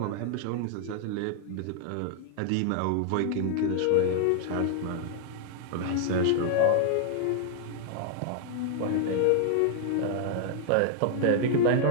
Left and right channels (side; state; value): both; different; correlation -0.01